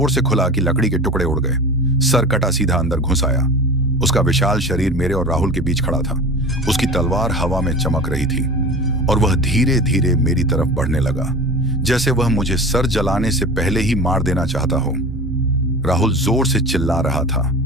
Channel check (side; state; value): both; normal; correlation 0.34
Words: से खुला कि लकड़ी के टुकड़े उड़ गए। सर कटा सीधा अंदर घुस आया। उसका विशाल शरीर मेरे और राहुल के बीच खड़ा था। उसकी तलवार हवा में चमक रही थी और वह धीरे धीरे मेरी तरफ बढ़ने लगा, जैसे वह मुझे सर जलाने से पहले ही मार देना चाहता हो। राहुल जोर से चिल्ला रहा था,